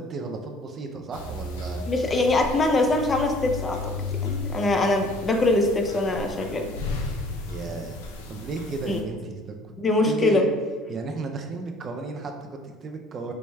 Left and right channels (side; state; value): both; normal; correlation 0.55